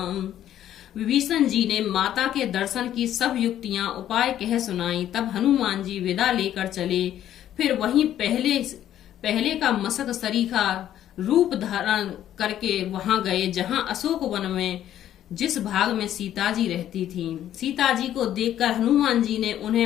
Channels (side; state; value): right; quieter; 11.5 dB